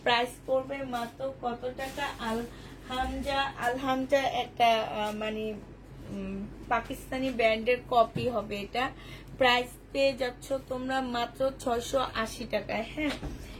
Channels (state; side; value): identical; both; correlation 1.00